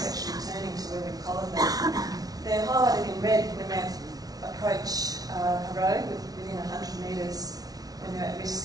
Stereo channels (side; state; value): left; late; 0.18 ms